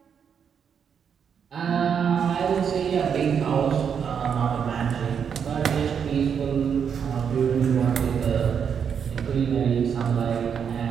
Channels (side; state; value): left; quieter; 7.3 dB